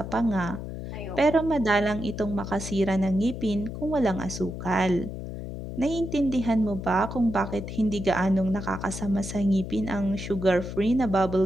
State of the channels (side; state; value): left; noise; hum, 8 dB below the sound